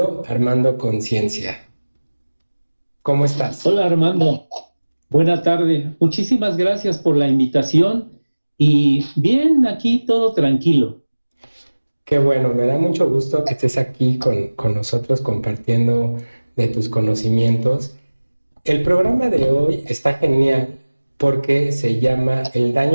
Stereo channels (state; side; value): inverted; both; correlation -1.00